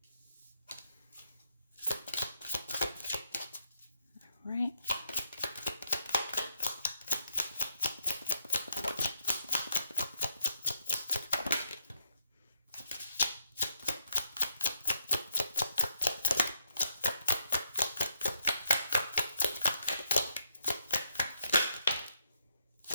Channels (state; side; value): inverted; both; correlation -0.76